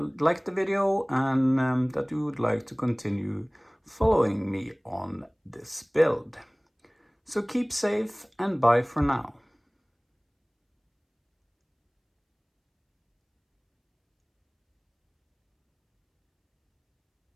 video, and that you would like to continue following me on this build. So keep safe and bye for now.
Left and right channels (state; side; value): identical; both; correlation 1.00